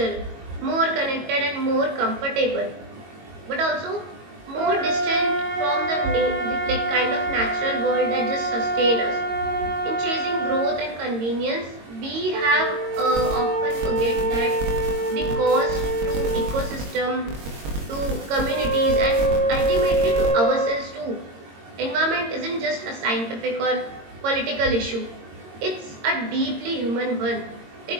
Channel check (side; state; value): left; late; 22 ms